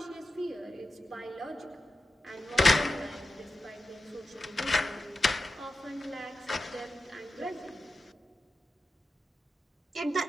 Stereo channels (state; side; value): normal; both; correlation 0.91